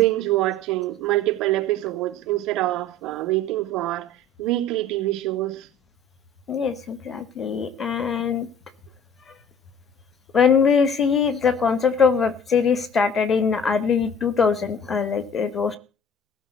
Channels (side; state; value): both; normal; correlation 0.46